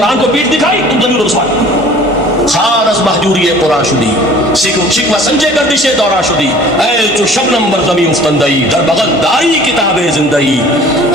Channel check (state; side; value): normal; both; correlation 0.48